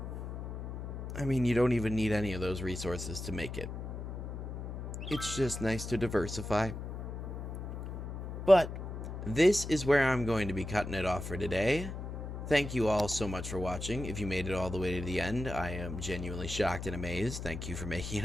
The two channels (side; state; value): left; noise; hum, 7 dB below the sound